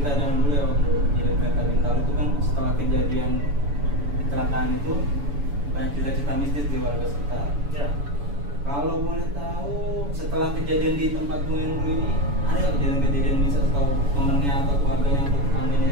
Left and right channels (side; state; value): left; late; 7.0 ms